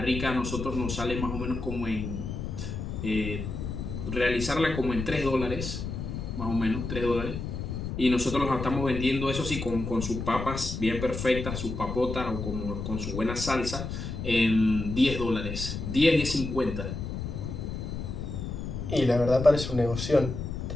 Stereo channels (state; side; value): noise; left; rumble, 5 dB below the sound